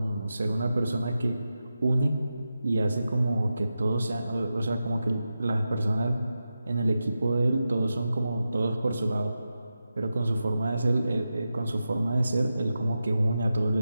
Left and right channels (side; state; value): both; inverted; correlation -0.91